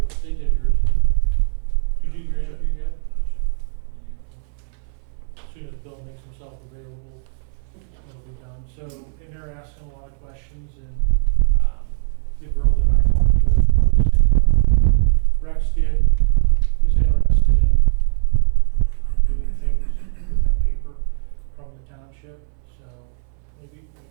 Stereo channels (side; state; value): left; silent; 66 dB below the other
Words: us. They did yours, didn't they? You do your interview yet? As soon as Bill makes himself available, it'll be done. So, and they're asking a lot of questions, and the girl that I talked to, probably the same one Rex did, is interested in doing things with that paper from the township. So maybe